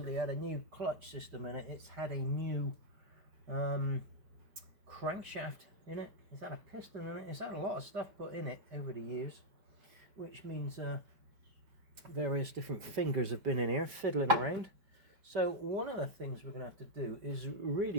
had a new clutch system in it. It's had a new crankshaft in it. It's had a piston in it. It's had a lot of stuff put in it over the years, which means various different fingers have been in here fiddling around. So one of the things we're going to have to do is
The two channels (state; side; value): late; left; 4.9 ms